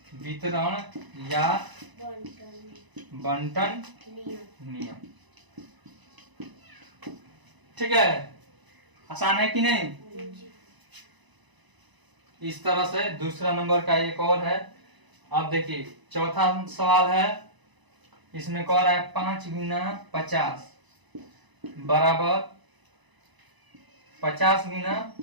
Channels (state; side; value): late; left; 1.0 ms